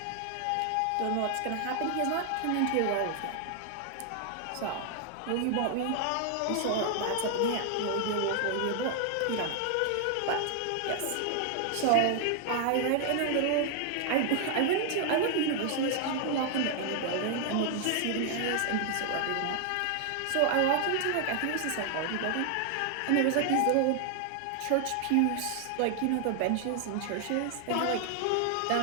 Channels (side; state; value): both; different; correlation 0.00